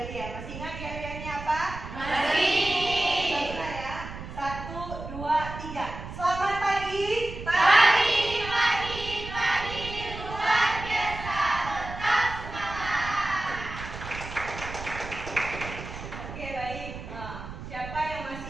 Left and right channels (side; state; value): right; noise; rumble, 10 dB below the sound